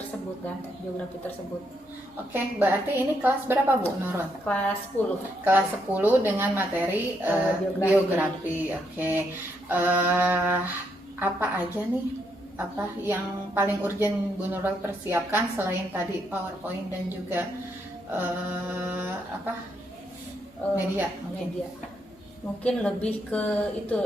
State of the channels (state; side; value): normal; both; correlation 0.77